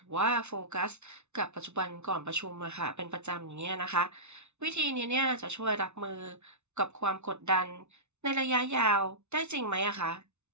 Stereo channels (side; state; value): left; late; 0.82 ms